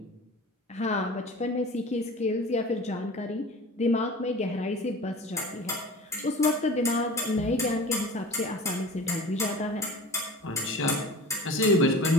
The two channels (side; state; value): both; normal; correlation 0.38